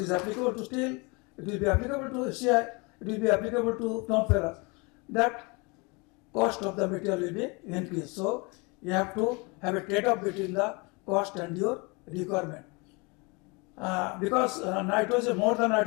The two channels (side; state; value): right; quieter; 28.8 dB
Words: is applicable to steel, it will be applicable to CI, it will be applicable to non-ferrous. That cost of the material will be increased. So you have to have a trade-off between the cost and your requirement. Because nitrogen, more than